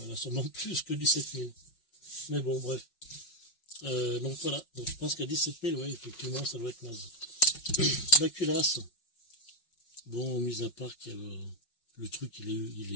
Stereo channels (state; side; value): late; right; 5.5 ms